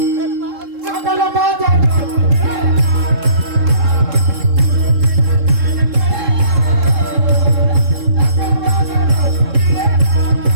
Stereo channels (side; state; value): left; late; 3.7 ms